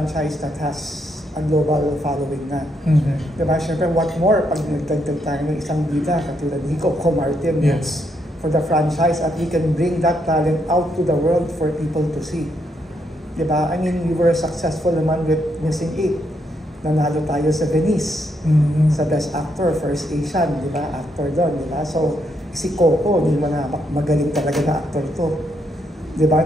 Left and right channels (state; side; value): normal; both; correlation 0.77